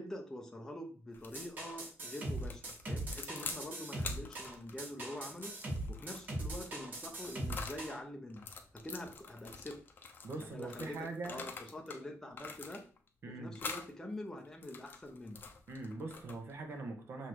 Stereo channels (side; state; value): both; normal; correlation 0.66